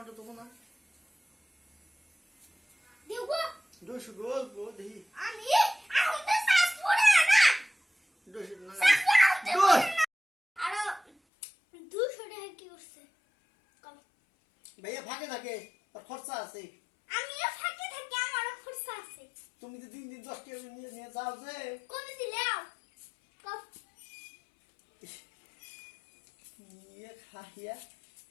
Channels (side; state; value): right; drops out; at 11.1 s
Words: তো তোমার দেবো দোষো গল্প দেই আমি এখন তো শ্বাস পড়ে না, দোষো না শ্বাস পড়ে দোষ আর 200 টাকা কি করছে কম। ভাইয়া ফাঁকে থাকে আর খরচা আছে। আমিও ফাঁকে থাকি, আমারও খরচা আছে। তুমি তো দিন দিন 10 টাকা নিয়ে নিয়ে যাও যে কত দিলেও কম ইয়ে খাইয়া